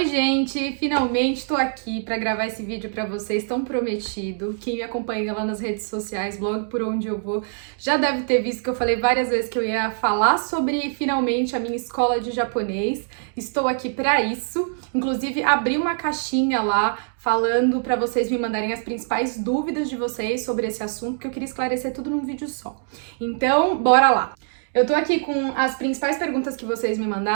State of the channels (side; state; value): left; silent; digital silence